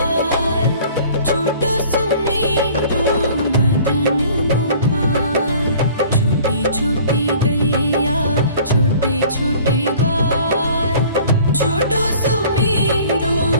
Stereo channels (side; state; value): both; inverted; correlation -0.50